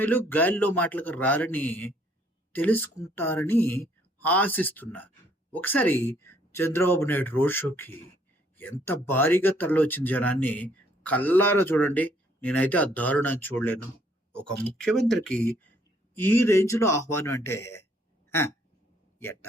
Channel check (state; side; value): normal; both; correlation 0.65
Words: గాలిలో మాటలకు రారని తెలుసుకుంటారని ఆశిస్తున్నారు. ఒకసారి చంద్రబాబు నాయుడు రోడ్ షోకి ఎంత భారీగా తరలివచ్చిన జనాన్ని కల్లారా చూడండి. నేనైతే ఆ దారుణాన్ని చూడలేను. ఒక ముఖ్యమంత్రికి ఈ రేంజ్లో ఆహ్వానం అంటే